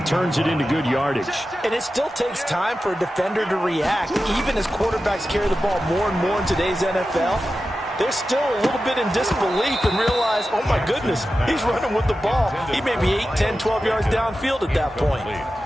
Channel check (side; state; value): both; normal; correlation 0.93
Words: turns it into good yardage. And it still takes time for a defender to react. Even as quarterbacks carry the ball more and more in today's NFL, they're still a little bit in disbelief and realize, oh my goodness, he's running with the ball. He may be 8, 10, 12 yards downfield at that point.